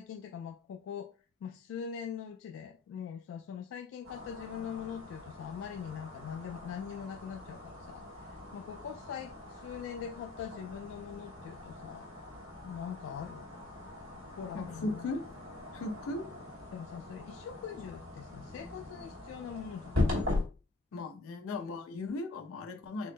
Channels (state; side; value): quieter; right; 3.5 dB